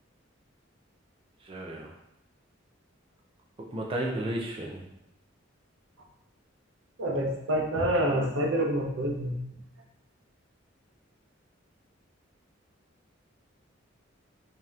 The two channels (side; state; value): both; normal; correlation 0.27